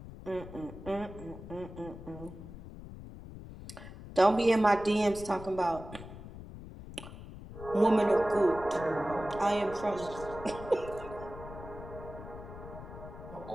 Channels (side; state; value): left; noise; rumble, 13 dB below the sound